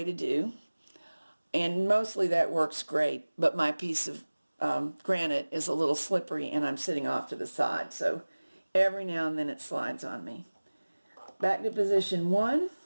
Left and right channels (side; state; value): both; inverted; correlation -1.00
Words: to do. And mostly that works great, but my piece of granite is a little slippery and I'm sitting off to the side, so every now and then it slides on me. Back to position 1,